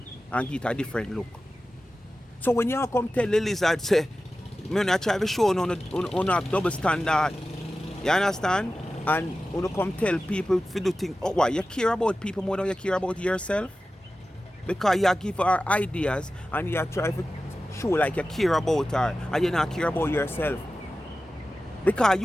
and give it a different look. So when you come tell the lizard, say, I try to show you have double standard. You understand? And you come tell people to do things. Oh, why? You care about people more than you care about yourself? Because you give her ideas and you try to show like you care about her and you not care about yourself. Because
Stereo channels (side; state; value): both; normal; correlation 0.94